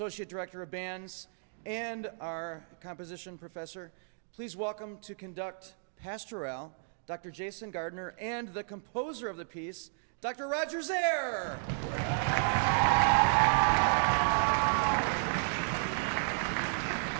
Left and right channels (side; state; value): left; silent; digital silence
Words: director of bands and our composition professor. Please welcome to conduct Pastorale, Dr. Jason Gardner, and the composer of the piece, Dr. Roger Zare.